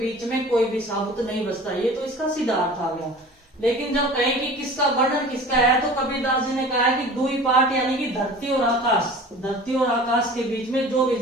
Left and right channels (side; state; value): both; normal; correlation 0.41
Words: में कोई भी साबुत नहीं बचता। ये तो इसका सीधा अर्थ आ गया। लेकिन जब कहें कि किसका वर्णन किसका है, तो कबीरदास जी ने कहा है कि दुई पार्ट यानी कि धरती और आकाश के बीच में जो भी